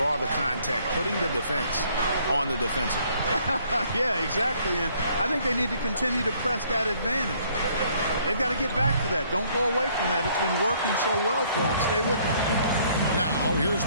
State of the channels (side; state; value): both; inverted; correlation -0.63